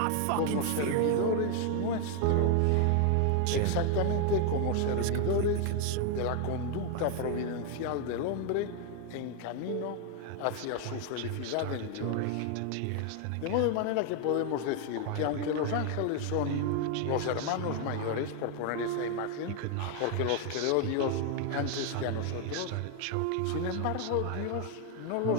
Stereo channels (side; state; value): both; different; correlation 0.00